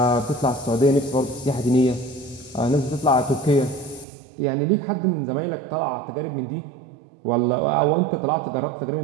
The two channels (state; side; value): drops out; left; at 4.0 s